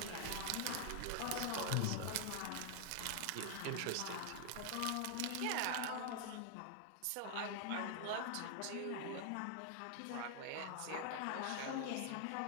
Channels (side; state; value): both; different; correlation 0.00